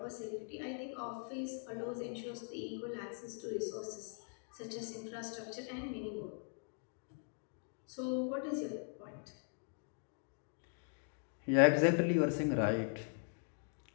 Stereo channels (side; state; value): right; silent; 51 dB below the other